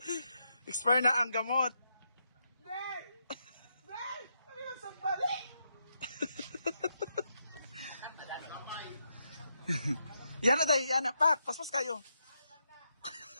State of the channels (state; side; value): inverted; both; correlation -0.81